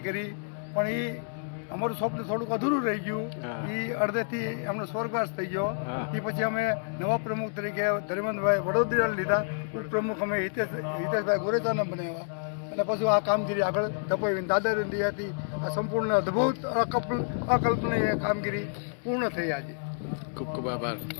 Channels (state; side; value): silent; right; digital silence